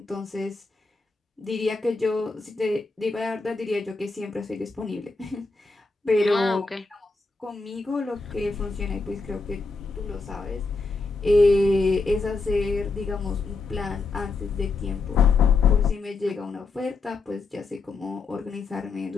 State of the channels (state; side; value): quieter; right; 3.9 dB